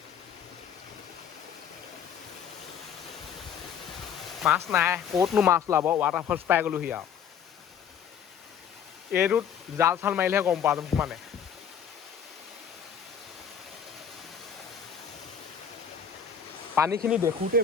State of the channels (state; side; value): quieter; right; 7.7 dB